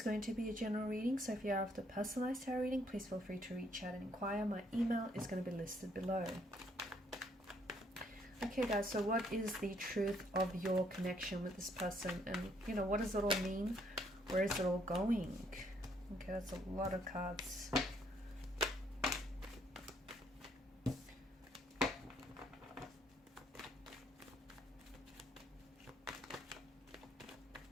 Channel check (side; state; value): both; normal; correlation 0.68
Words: going to be a general reading, so if you are after personalized tarot reading, please feel free to reach out and inquire. My email is going to be listed below. Okay guys, so what is the truth of your connection with this person, and what does it all mean? Where is it all going? Okay, that's a lot of cards.